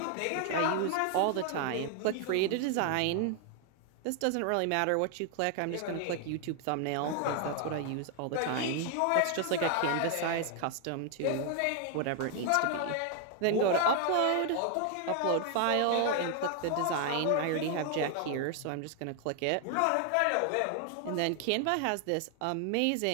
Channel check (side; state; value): both; different; correlation 0.00